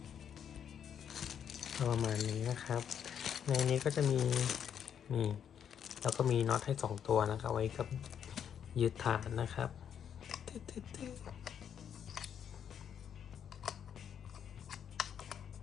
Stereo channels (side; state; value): right; quieter; 8.5 dB